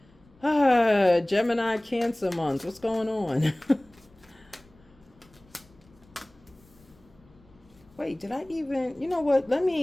Gemini, Cancer month. What's going on? Wait, did I even, you know what?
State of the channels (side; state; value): left; noise; rumble, 29 dB below the sound